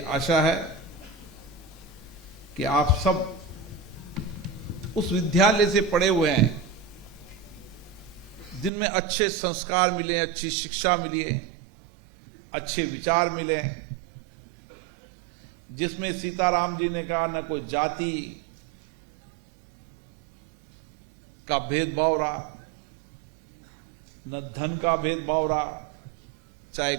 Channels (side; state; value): left; drops out; at 8.7 s